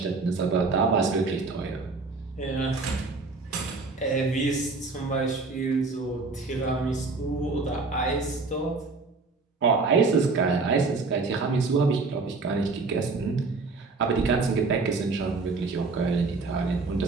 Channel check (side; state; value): left; quieter; 3.9 dB